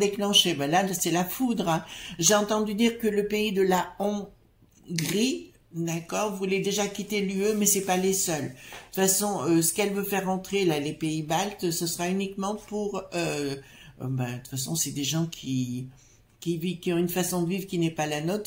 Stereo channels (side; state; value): both; identical; correlation 1.00